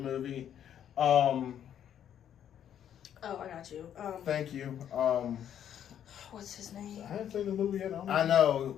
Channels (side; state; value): right; quieter; 9.8 dB